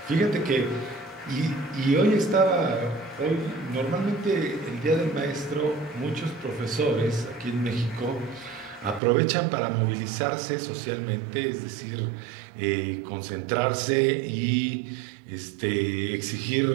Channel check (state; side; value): drops out; left; at 9.0 s